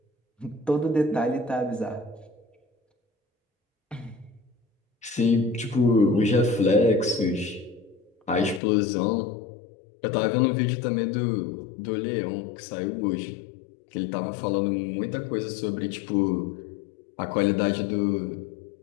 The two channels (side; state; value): right; drops out; at 8.6 s